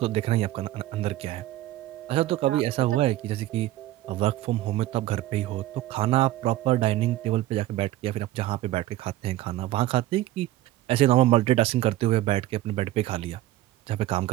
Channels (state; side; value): quieter; left; 15.3 dB